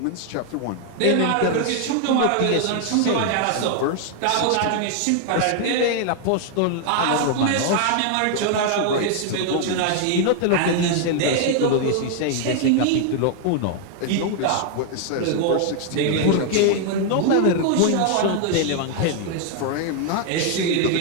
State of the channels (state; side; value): different; both; correlation 0.00